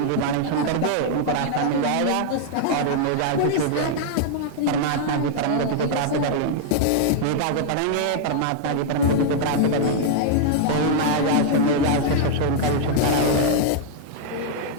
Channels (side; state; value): both; different; correlation -0.01